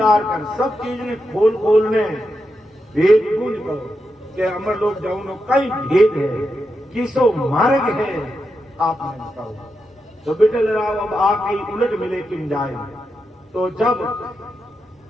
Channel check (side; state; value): both; normal; correlation 0.86